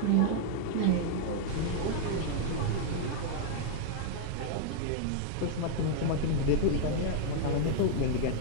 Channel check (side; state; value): both; different; correlation -0.01